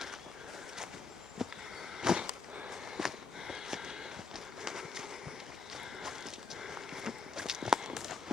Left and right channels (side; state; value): right; quieter; 4.3 dB